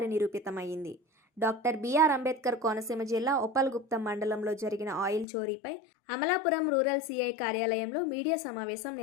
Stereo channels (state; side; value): drops out; right; at 5.2 s